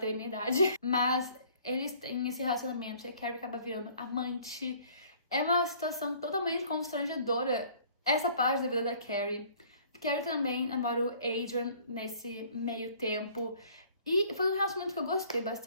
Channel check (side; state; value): both; inverted; correlation -0.55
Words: a minha idade. Mas eles têm esse relacionamento e a Carrie acaba virando amante. É uma situação totalmente constrangedora essa parte da vida da Carrie. Carrie também namora o Adrian nesse meio tempo. E foi um relacionamento que eu gostei